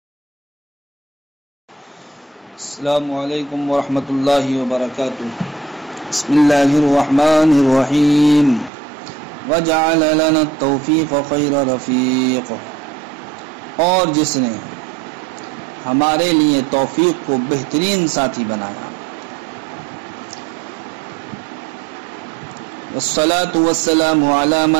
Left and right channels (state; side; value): drops out; left; at 8.7 s